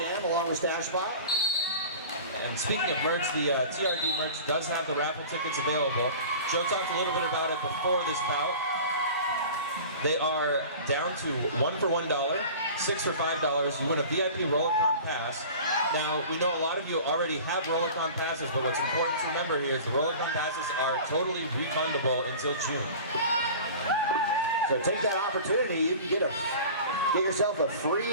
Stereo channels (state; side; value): inverted; both; correlation -0.39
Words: along with Stash Spot. And speaking of merch, the TRD merch does have the raffle tickets available. Joe talked a little bit about it before this bout. They are down to 1 for $1, 6 for $5. You win a VIP Rollicon pass. Now, we know a lot of you already have Rollicon passes, but what's important to remember here is the Rollicon passes are totally refundable until June. So take that opportunity. You can get yourself a